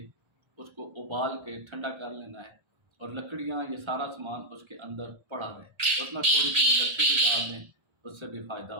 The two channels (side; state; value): left; late; 1.3 ms